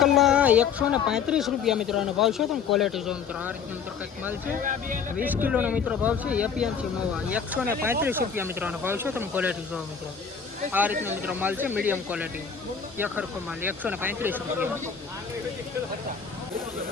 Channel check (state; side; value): quieter; right; 6.6 dB